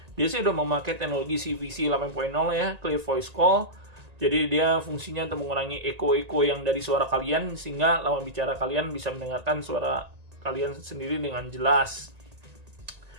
Dia sih udah memakai teknologi CVC 8.0 ya, Clear Voice Call. Jadi dia fungsinya untuk mengurangi eko-eko yang dari suara kalian, sehingga lawan bicara kalian bisa mendengarkan suara kalian sendiri dengan jelas.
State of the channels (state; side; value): late; left; 1.8 ms